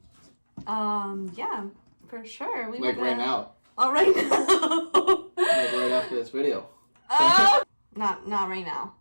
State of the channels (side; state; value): both; inverted; correlation -1.00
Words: Yeah, for sure. Like right now. Oh, right now. Like right after this video. Not right now.